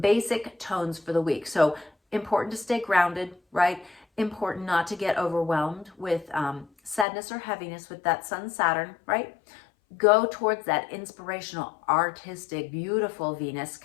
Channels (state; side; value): drops out; right; at 7.1 s